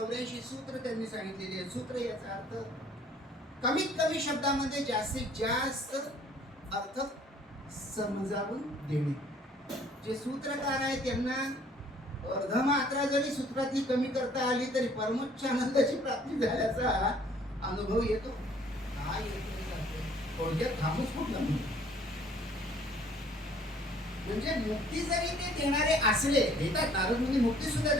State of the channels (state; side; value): normal; both; correlation 0.57